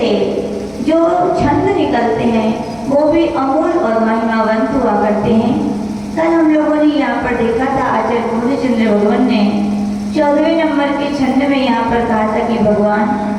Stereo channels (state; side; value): noise; right; hum, 27 dB below the sound